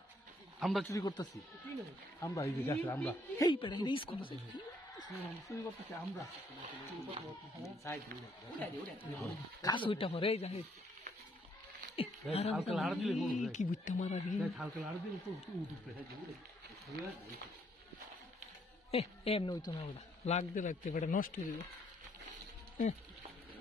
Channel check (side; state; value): both; normal; correlation 0.69